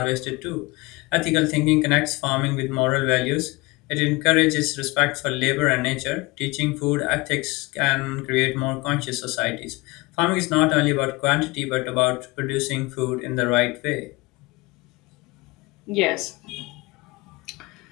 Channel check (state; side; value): quieter; right; 23.9 dB